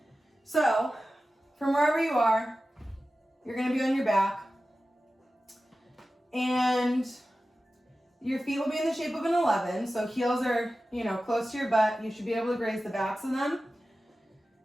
So, from wherever you are, you're gonna be on your back. And your feet will be in the shape of an 11. So heels are, close to your butt. You should be able to graze the backs of them.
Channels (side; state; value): both; normal; correlation 0.94